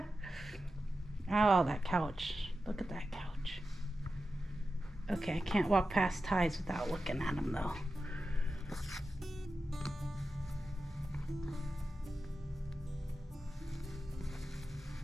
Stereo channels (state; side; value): normal; both; correlation 0.91